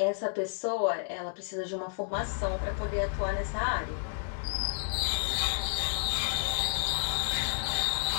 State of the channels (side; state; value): right; silent; digital silence